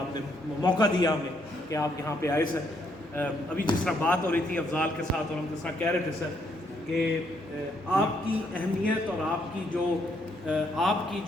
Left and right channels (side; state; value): both; normal; correlation 0.73